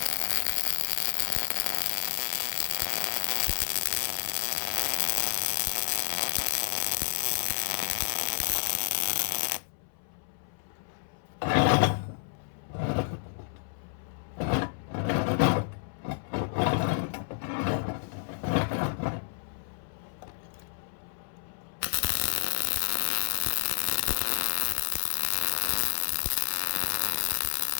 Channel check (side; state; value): right; silent; 58 dB below the other